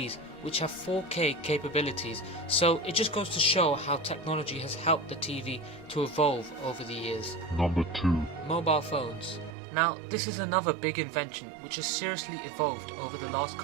which have 4K capabilities, so it just goes to show how technology has helped the TV to evolve over the years. Number 2. Mobile phones. Now, this is another big invention which has seriously evolved over the last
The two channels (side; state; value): left; drops out; at 9.6 s